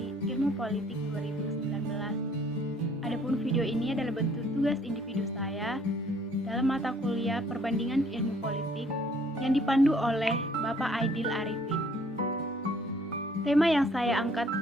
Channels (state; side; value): normal; both; correlation 0.61